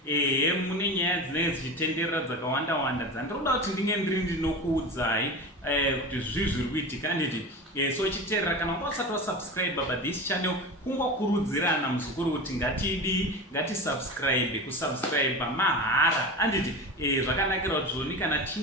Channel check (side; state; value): both; normal; correlation 0.28